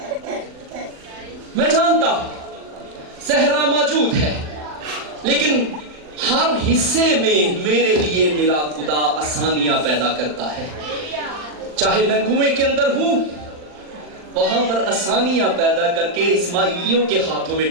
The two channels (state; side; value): late; left; 40 ms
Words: मैं जानता हूं सहरा मौजूद है, लेकिन हर हिस्से में मेरे लिए मेरा खुदा आसानियां पैदा करता है। चाहे मैं कुएं के अंदर हूं, वहां पर आसानियां पैदा करके इस्माइलियों के हाथों में